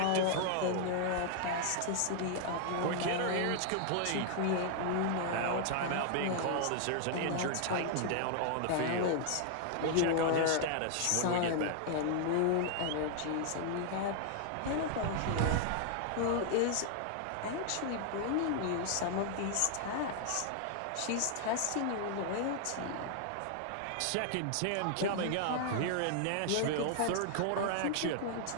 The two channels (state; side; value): different; both; correlation 0.00